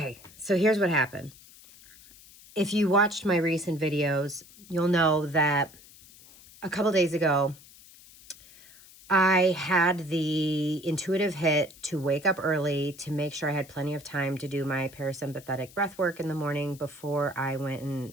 here's what happened. If you watched my recent videos, you'll know that a couple days ago, I had the intuitive hit to wake up early to make sure I had plenty of time to do my parasympathetic breath work in the morning before I went and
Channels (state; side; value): noise; left; hiss, 22 dB below the sound